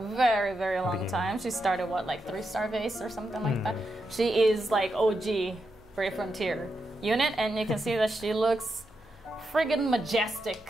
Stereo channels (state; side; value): normal; both; correlation 0.86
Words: very, very long time. She started, what, like 3-star base or something like that? She is like OG Brave Frontier unit, and you can see that she looks friggin' majestic